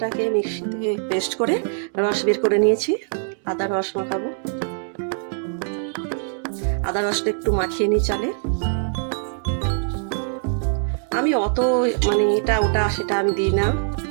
মিক্সিতে পেস্ট করে রস বের করে নিয়েছি, আদা রস মাখাবো। আদা রসটা একটু মাখিয়ে নিই চালে। আমি অত এটা ওটা সেটা আমি দিই না,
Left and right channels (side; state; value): left; silent; 64 dB below the other